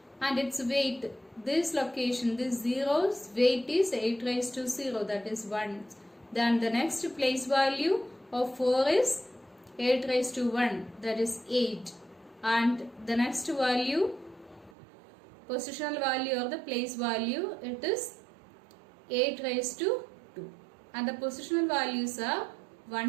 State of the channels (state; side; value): drops out; left; at 14.7 s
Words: and its weight, this location, this 0's weight is 8 raised to 0, that is 1. Then the next place value of 4 is 8 raised to 1, that is 8. And the next value, positional value or the place value, it is 8 raised to 2. And the positional values are